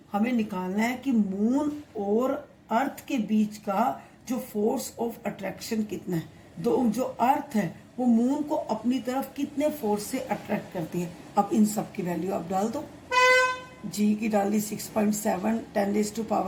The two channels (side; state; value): both; identical; correlation 1.00